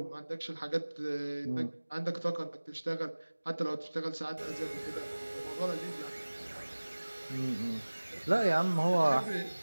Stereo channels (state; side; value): inverted; both; correlation -1.00